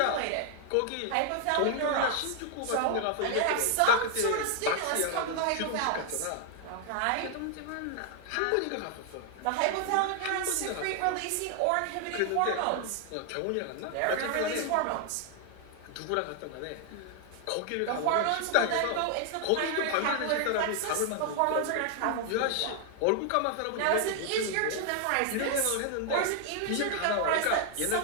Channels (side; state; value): both; different; correlation 0.00